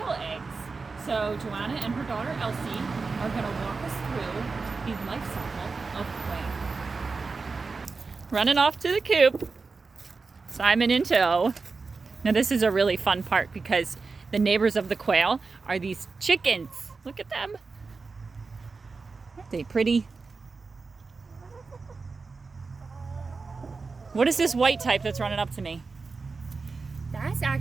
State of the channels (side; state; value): left; quieter; 4.3 dB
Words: eggs. So Joanna and her daughter Elsie are going to walk us through the life cycle of quail. Running off to the coop. Simon in tow. Now this is a really fun part because the neighbors of the quail are these chickens. Look at them. Aren't they pretty? What is this white type that's running up to me? That's